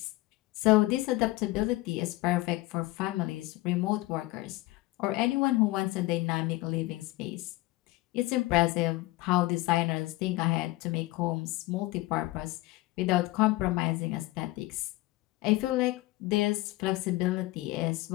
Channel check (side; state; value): right; quieter; 19.5 dB